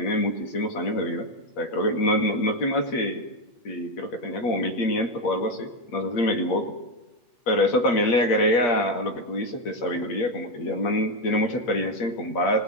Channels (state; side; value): late; right; 8.5 ms